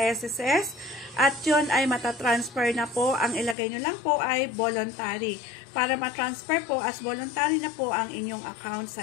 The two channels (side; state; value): right; drops out; at 3.6 s